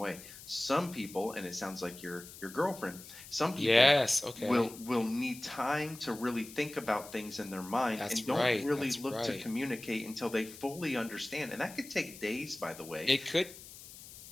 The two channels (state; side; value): noise; left; hiss, 16 dB below the sound